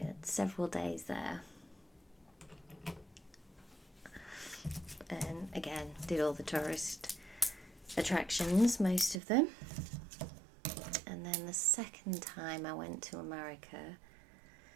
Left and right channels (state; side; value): drops out; left; at 9.2 s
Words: several days there, and again did all the tourist attractions, most of them. And then the second time I went to America,